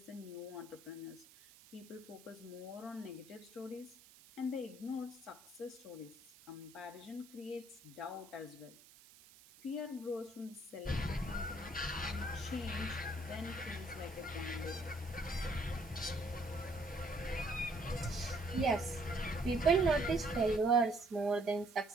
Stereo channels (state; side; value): noise; right; hiss, 22 dB below the sound